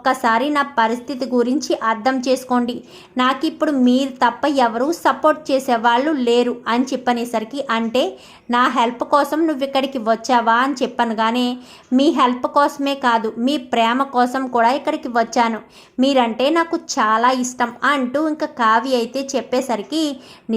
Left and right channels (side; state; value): both; identical; correlation 1.00